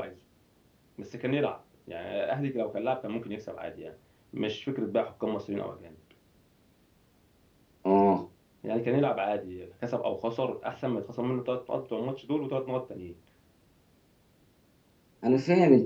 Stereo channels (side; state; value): both; identical; correlation 1.00